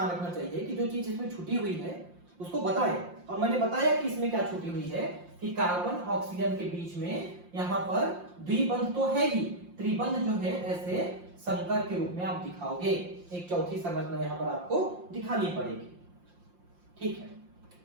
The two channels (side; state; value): left; late; 5.7 ms